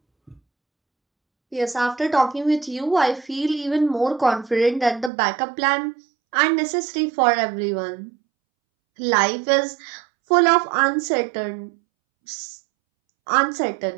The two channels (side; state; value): left; drops out; at 5.1 s